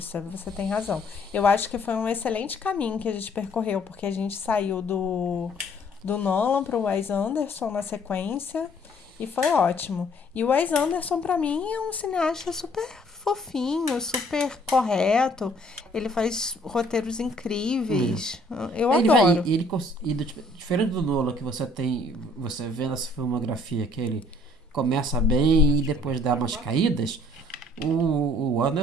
você tem razão. Eu acho que foi um excelente caminho que a gente percorreu, porque a gente saiu do Nolan pro Wes Anderson na sequência, e foi ótimo. E o Wes Anderson, pra mim, é um cineasta super fofinho, super correto. Ele faz roteiros incríveis. Eu adoro. Diferente do Nolan, que você vê nessa filmografia que ele começa bem e depois dá umas caídas, o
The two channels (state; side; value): normal; both; correlation 0.60